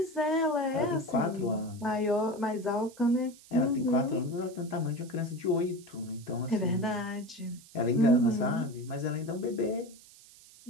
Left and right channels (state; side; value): noise; right; hiss, 22 dB below the sound